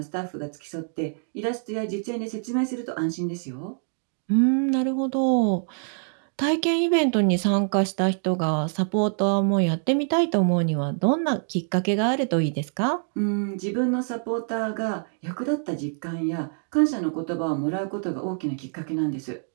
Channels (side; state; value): left; silent; 61 dB below the other